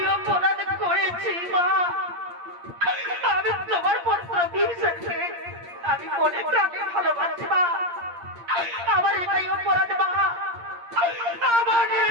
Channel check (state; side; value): late; left; 8.6 ms